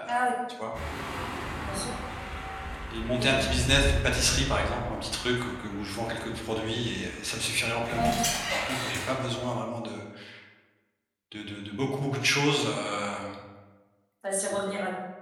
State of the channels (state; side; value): identical; both; correlation 1.00